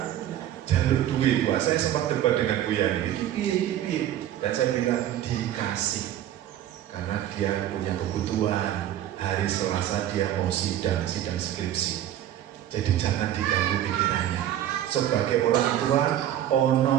Jaluk duit. Wah, saya sempat debat dengan Bu Yani. Iki. Dan saya bilang dikasih. Karena dia punya kebutuhan. hari Selasa dia mau sidang skripsi. Jadi jangan diganggu pikirannya. Sebagai orang tua, ono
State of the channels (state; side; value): quieter; left; 11.9 dB